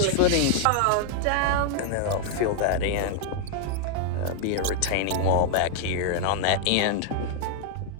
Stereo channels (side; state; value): both; different; correlation -0.01